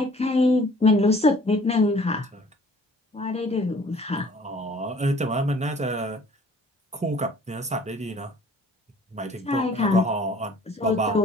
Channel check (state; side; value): normal; both; correlation 0.54